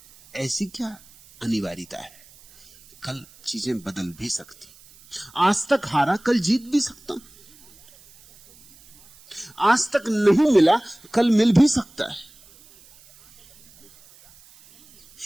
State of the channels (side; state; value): right; noise; hiss, 26 dB below the sound